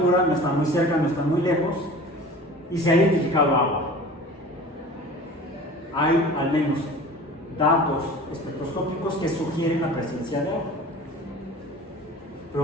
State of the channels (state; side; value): normal; both; correlation 0.40